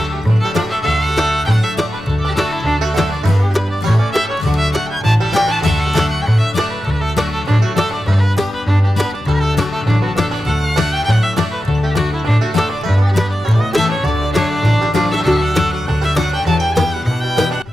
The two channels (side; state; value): left; noise; rumble, 22 dB below the sound